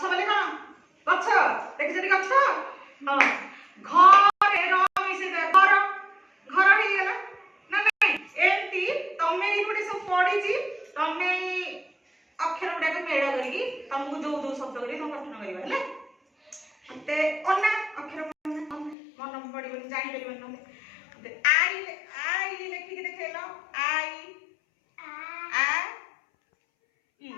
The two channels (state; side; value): drops out; right; at 18.9 s